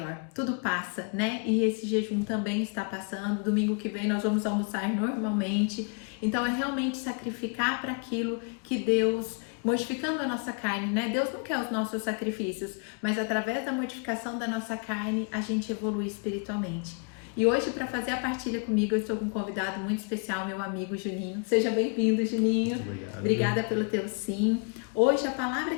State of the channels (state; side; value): quieter; right; 36.8 dB